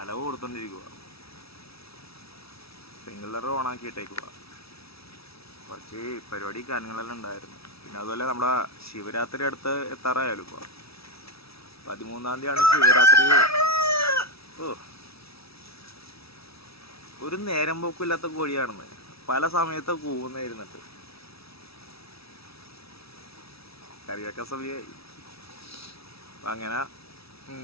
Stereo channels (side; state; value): right; late; 0.77 ms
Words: കൊടുത്തോണ്ടിരിക്കുക, സ്പ്രിംഗ്ലർ ഓണാക്കിയിട്ടേക്കുക. കുറച്ച് പരിപാടി കാര്യങ്ങളെല്ലാം ഉണ്ടായിരുന്നു. പിന്നെ അതുപോലെ നമ്മുടെ ശിവരാത്രി അടുത്ത് എത്താറായാലും ഇപ്പോൾ 13-ാം തീയതിയാണ് ശിവരാത്രി. ഒരു നേരം പോക്കില്ലാത്ത കോഴിയാണെന്ന് പല സമയത്ത് കൂവുന്നായിരുന്നിട്ട് കറിവെക്കാൻ സമയമായി. അങ്ങനെ